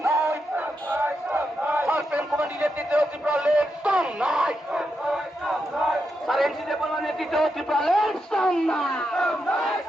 সার্পেন কমান্ডি নেতৃত্বে ত্রিপুরালের সামনায় সারেন্সি দেবলা নেতৃত্বে ত্রিপুরালের সামনায়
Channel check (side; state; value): both; normal; correlation 0.85